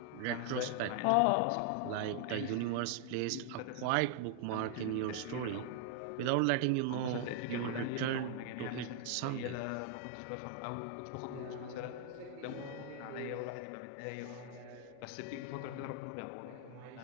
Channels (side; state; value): both; different; correlation 0.00